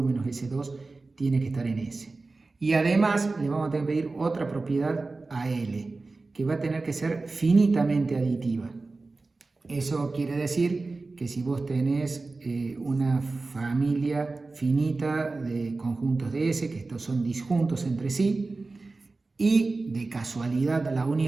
menos S2 tiene que estar en S. Y además le vamos a tener que pedir otra propiedad a L, que va a tener que ser finitamente aditiva. Eso quiere decir que si vos tenés una familia finita de conjuntos de S, que estos son disjuntos entre sí, y de casualidad la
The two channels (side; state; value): left; quieter; 3.6 dB